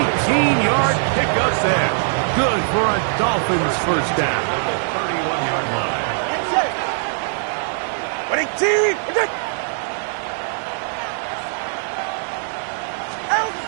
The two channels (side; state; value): left; silent; 60 dB below the other